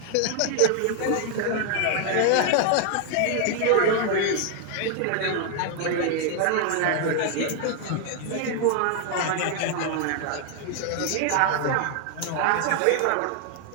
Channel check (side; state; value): both; different; correlation 0.00